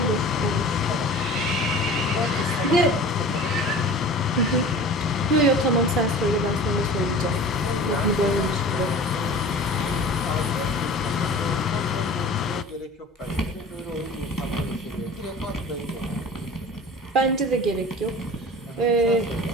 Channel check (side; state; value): both; normal; correlation 0.40